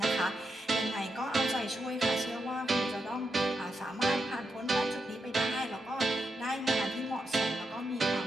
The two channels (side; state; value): both; normal; correlation 0.85